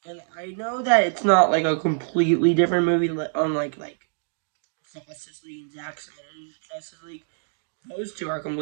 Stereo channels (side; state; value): left; silent; digital silence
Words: And I know that it's not like a completely different movie, unlike like Justice League and Zack Snyder's Justice League. Those two are